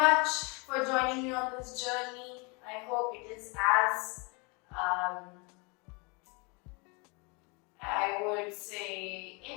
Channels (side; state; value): right; quieter; 30.8 dB